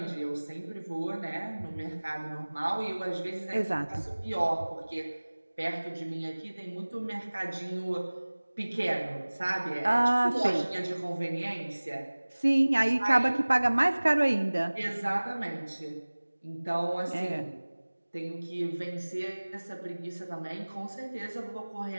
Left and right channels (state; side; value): inverted; both; correlation -1.00